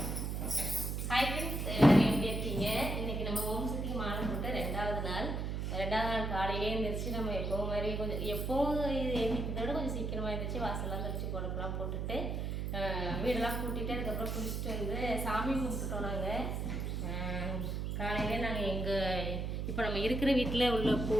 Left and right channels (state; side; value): noise; right; hum, 2 dB below the sound